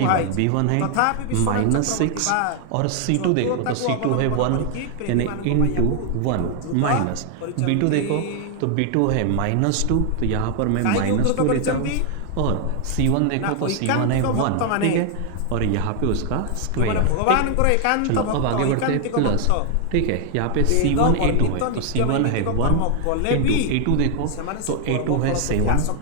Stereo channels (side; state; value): both; different; correlation 0.00